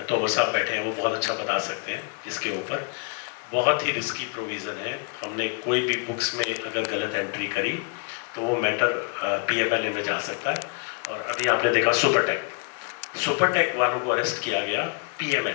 तो वो साहब बैठे हैं, वो बहुत अच्छा बता सकते हैं इसके ऊपर। बहुत ही रिस्की प्रोविज़न है। हमने कोई भी बुक्स में अगर गलत एंट्री करी तो वो मैटर PMLA में जा सकता है। और अभी आपने देखा सुपरटेक वालों को अरेस्ट किया गया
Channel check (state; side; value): quieter; right; 37.6 dB